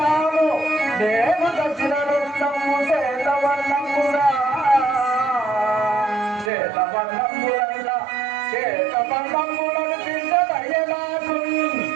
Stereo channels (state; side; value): drops out; left; at 6.5 s